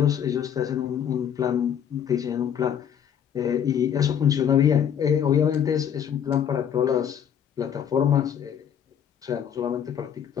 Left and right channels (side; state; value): right; quieter; 8.7 dB